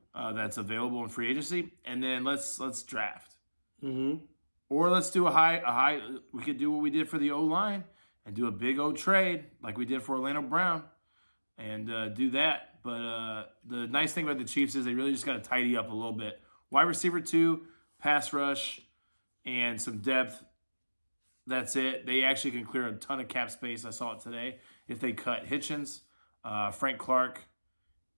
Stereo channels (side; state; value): both; inverted; correlation -1.00